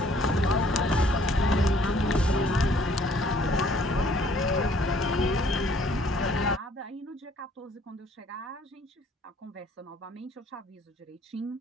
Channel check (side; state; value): both; normal; correlation 0.60